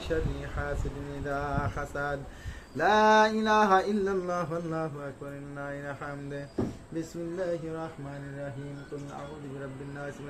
شر حاسد إذا حسد لا إله إلا الله والله أكبر لله الحمد بسم الله الرحمن الرحيم قل أعوذ برب الناس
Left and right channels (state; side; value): identical; both; correlation 1.00